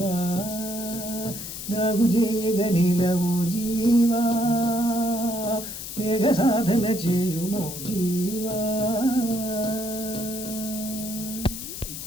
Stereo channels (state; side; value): noise; left; hiss, 8 dB below the sound